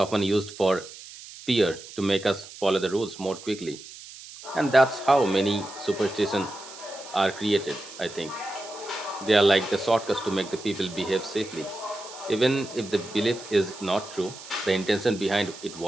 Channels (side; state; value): right; noise; hiss, 16 dB below the sound